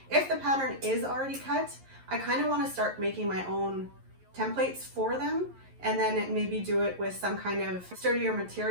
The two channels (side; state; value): left; late; 11 ms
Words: If the pattern is already cut, I kind of want to start making my own templates for them, and then maybe do it with some kind of sturdier